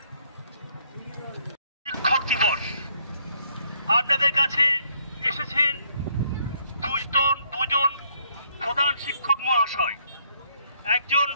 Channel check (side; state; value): both; inverted; correlation -0.69